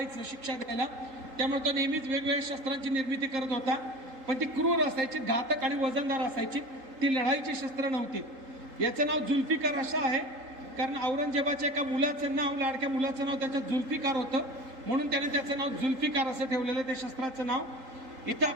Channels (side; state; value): left; late; 3.8 ms